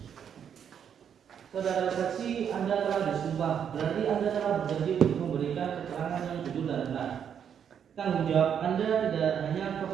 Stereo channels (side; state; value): left; quieter; 8.2 dB